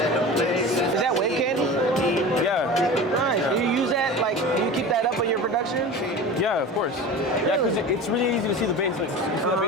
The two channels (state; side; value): normal; both; correlation 0.33